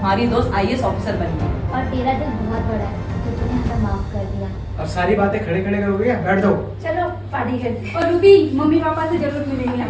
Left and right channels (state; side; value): identical; both; correlation 1.00